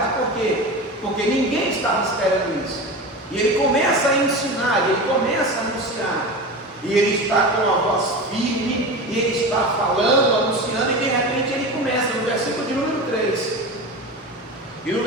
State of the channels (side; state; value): both; normal; correlation 0.28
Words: por quê? Porque ninguém estava esperando isso. E ele começa a ensinar, ele começa a anunciar, e ele está com a voz firme, e ele está falando, anunciando, e de repente ele começa no versículo de número 3. E no